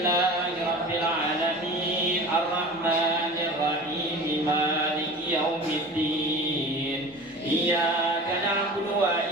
alamin arrahmanir rahim maliki yaumiddin. Iyyaka na'budu wa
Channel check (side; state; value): both; normal; correlation 0.37